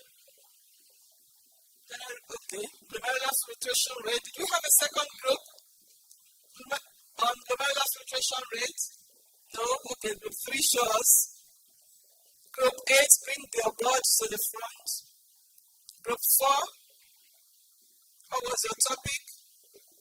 Okay, glomerular filtration rate. Did we have a second group on glomerular filtration rate? No? Okay, group 3 show us. Group 8, bring your board to the front. Group 4, what was your topic?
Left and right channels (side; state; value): both; identical; correlation 1.00